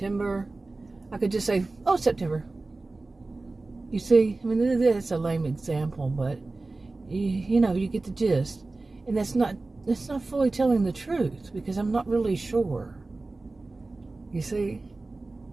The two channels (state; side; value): quieter; left; 3.3 dB